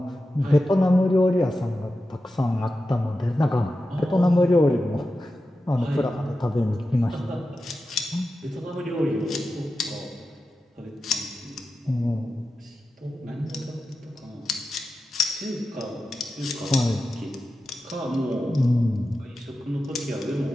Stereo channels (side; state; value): both; normal; correlation 0.91